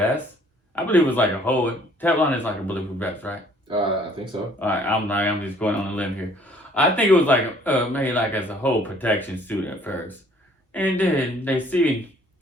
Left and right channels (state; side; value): normal; both; correlation 0.58